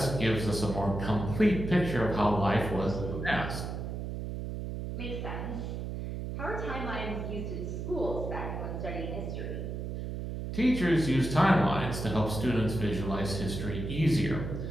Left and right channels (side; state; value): right; noise; hum, 5 dB below the sound